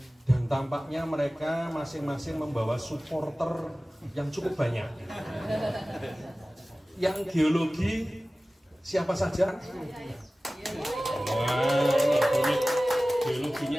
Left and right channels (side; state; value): both; normal; correlation 0.97